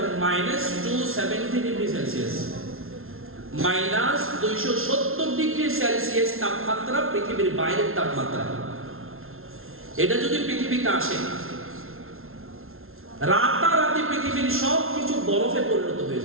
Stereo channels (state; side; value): late; left; 0.61 ms